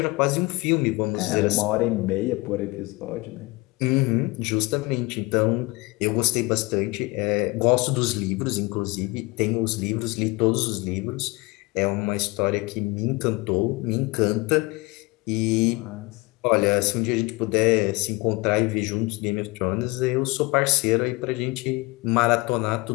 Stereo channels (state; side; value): quieter; right; 24.7 dB